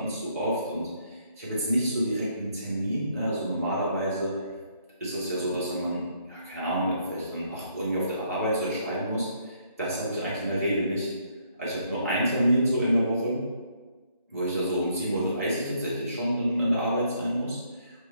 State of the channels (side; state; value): both; inverted; correlation -0.70